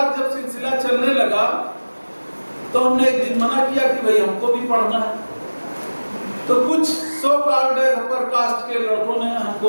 जब सिलसिला चलने लगा तो हमने एक दिन मना किया कि भाई हमको भी पढ़ना है। तो कुछ सो कॉल्ड अपर कास्ट के लड़कों ने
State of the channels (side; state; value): both; inverted; correlation -1.00